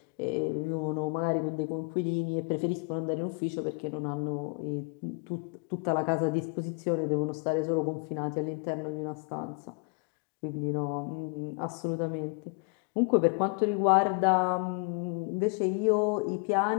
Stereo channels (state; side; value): quieter; right; 35.0 dB